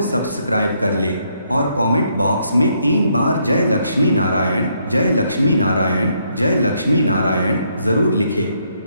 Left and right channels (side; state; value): both; inverted; correlation -0.73